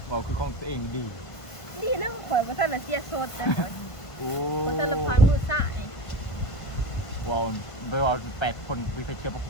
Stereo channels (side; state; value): right; late; 1.5 ms